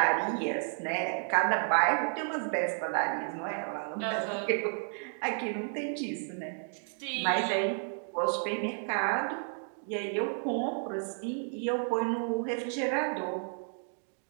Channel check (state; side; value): silent; left; 56 dB below the other